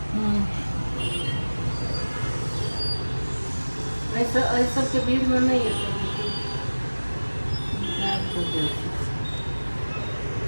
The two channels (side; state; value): both; inverted; correlation -1.00